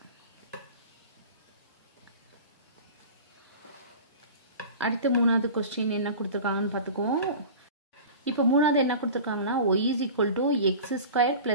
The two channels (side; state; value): both; inverted; correlation -0.37